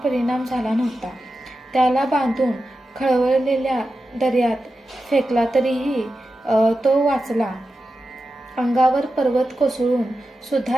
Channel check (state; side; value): normal; both; correlation 0.91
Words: परिणाम झाला नव्हता. त्याला बांधून खळवळलेल्या दर्यात फेकला तरीही तो वाचला. अंगावर पर्वत कोसळून